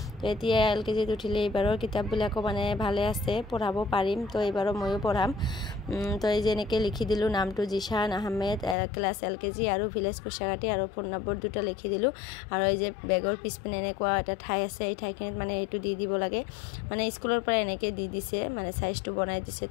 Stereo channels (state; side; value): drops out; right; at 8.8 s